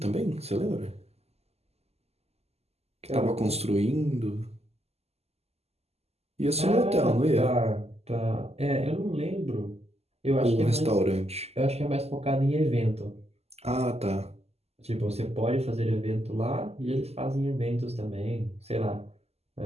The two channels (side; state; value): left; late; 0.30 ms